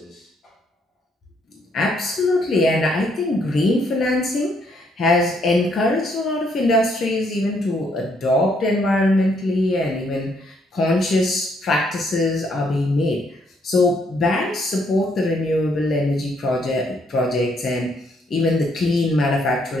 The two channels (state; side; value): normal; both; correlation 0.71